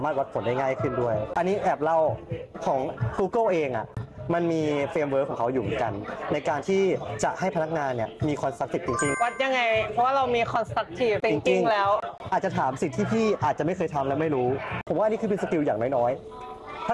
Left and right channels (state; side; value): identical; both; correlation 1.00